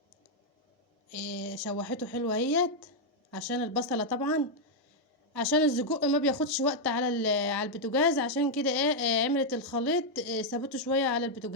شوحته حلوه اهيت، عشان البصله طبعا، عشان السجق ما بياخدش وقت على على البوتاجاز، عشان كده عملت الخليط سابته شويه على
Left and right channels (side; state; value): both; normal; correlation -0.02